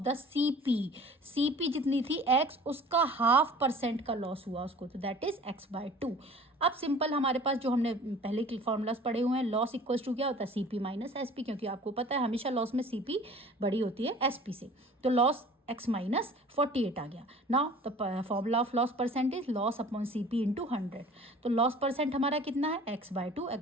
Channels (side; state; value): both; normal; correlation 0.46